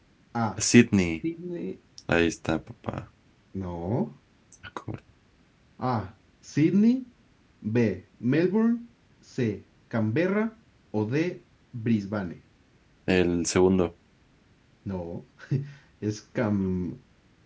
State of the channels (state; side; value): identical; both; correlation 1.00